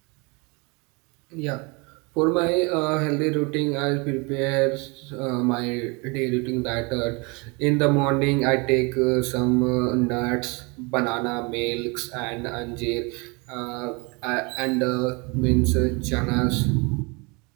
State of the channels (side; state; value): left; quieter; 29.0 dB